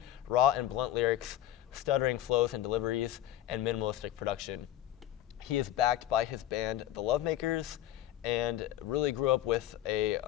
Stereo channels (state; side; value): quieter; right; 12.9 dB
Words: raw and blunt lyrics, stuttering flows and deliveries, and minimalistic production. He is backed by his band, The Lovemakers, and really grew up with a